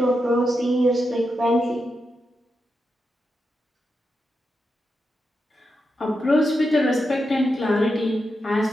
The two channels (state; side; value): normal; both; correlation 0.87